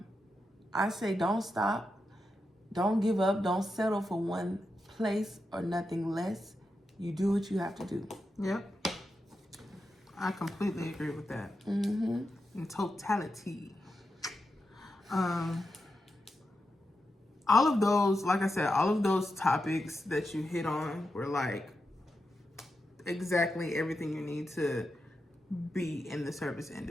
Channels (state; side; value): normal; both; correlation 0.88